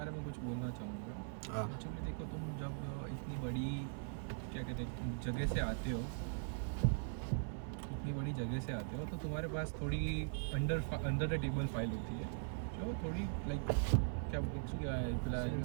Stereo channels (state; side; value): silent; left; 50 dB below the other